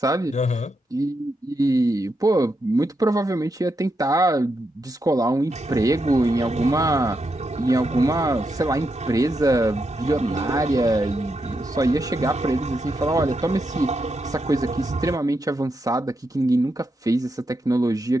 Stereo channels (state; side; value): normal; both; correlation 0.84